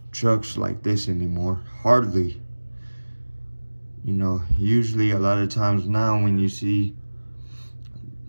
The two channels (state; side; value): inverted; both; correlation -1.00